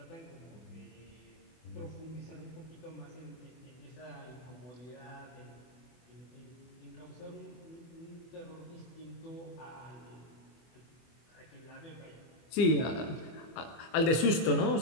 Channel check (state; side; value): late; right; 25 ms